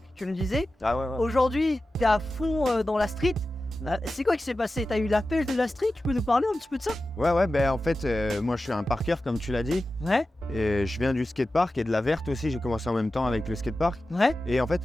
tu me disais. ah ouais, Aujourd'hui, t'es à fond dans la street. C'est quoi qui s'est passé? T'as eu la pêche de la street? Tu peux nous parler un petit peu de ça? ouais, ben en fait, moi je suis un parker comme tu l'as dit, Ouais, et je viens du skatepark et de la verte aussi. J'ai commencé en même temps avec le skatepark. ouais, Et en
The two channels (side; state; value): both; normal; correlation 0.94